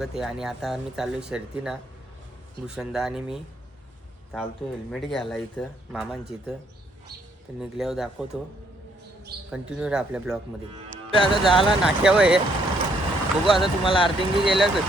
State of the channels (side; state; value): both; normal; correlation 0.69